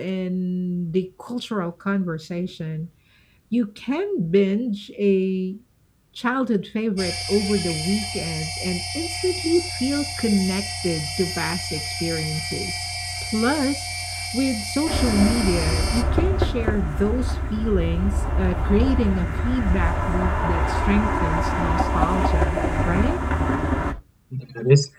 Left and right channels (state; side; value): identical; both; correlation 1.00